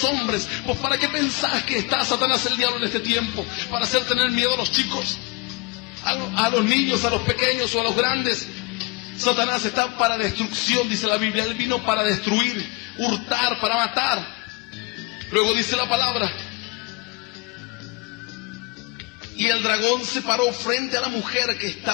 hombres. Pues ¿para qué pensás que está Satanás, el diablo, en este tiempo? ¿Para hacer tener miedo a los chicos? ¿A los niños, a los pequeños o a los grandes? Satanás está para destrucción, dice la Biblia. Él vino para destruir, hurtar, para matar. Luego dice la palabra: y el dragón se paró frente a la mujer que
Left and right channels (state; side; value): quieter; right; 25.8 dB